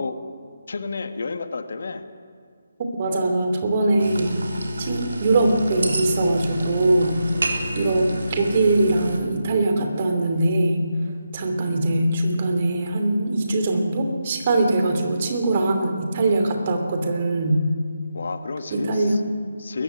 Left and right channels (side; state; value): both; inverted; correlation -0.85